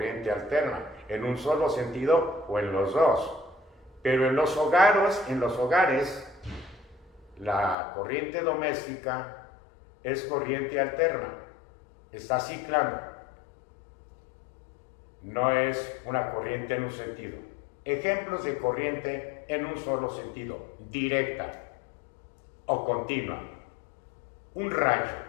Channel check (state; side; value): drops out; right; at 7.8 s